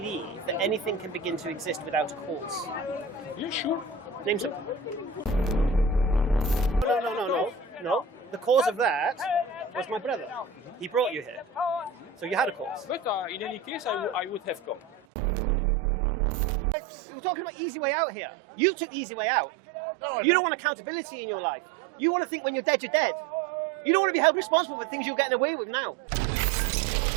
that anything can begin to exist without a cause? You sure? Name some. No. The cause of that was my brother. He brought you here. So you had a cause. But in any case, I would have come. We're talking about easy way out here. You took the easy way out. No, You don't want accountability in your life. You want to think when you're dead, you're dead. You don't want to be held responsible for things you're getting away with now.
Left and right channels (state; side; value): drops out; left; at 15.0 s